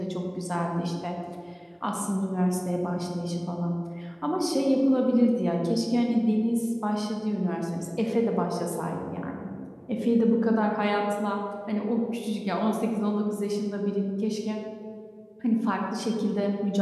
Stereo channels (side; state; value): both; identical; correlation 1.00